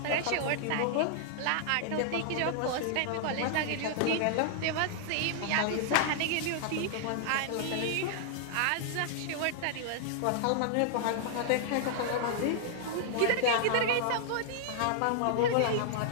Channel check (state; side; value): different; both; correlation -0.01